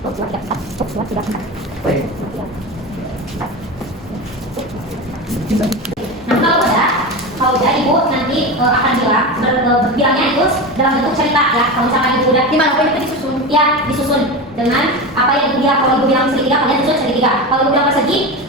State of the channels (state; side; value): normal; both; correlation 0.23